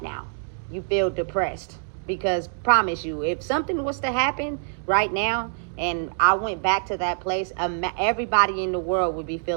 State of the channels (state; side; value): silent; left; digital silence